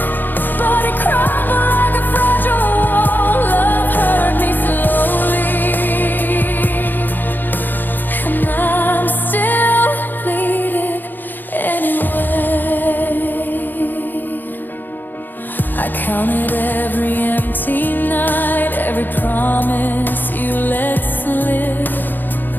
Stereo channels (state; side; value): late; right; 0.090 ms